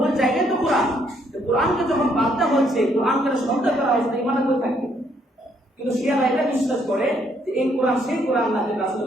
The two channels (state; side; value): normal; both; correlation 0.70